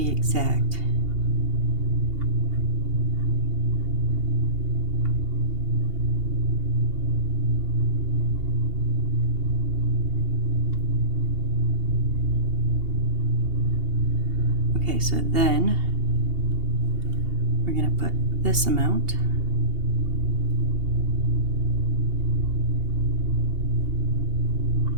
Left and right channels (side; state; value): left; late; 2.8 ms